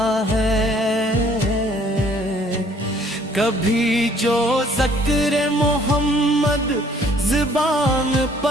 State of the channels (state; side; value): normal; both; correlation 0.59